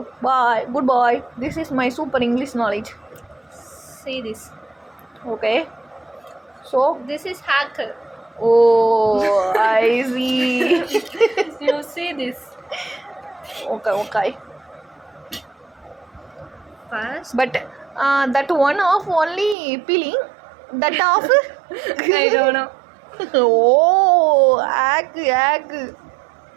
Bye. Goodbye. This is my super English knowledge. See this. Okay. So. This is hacker. Oh, I see. You see this. Okay. First. But that one off only peeling. That off. I don't know. Oh, hack.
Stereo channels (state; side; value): drops out; left; at 19.6 s